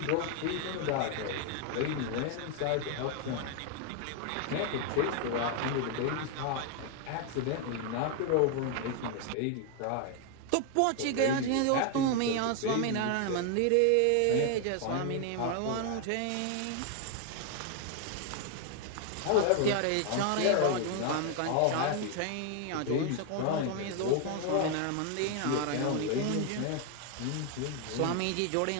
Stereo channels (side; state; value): both; different; correlation 0.01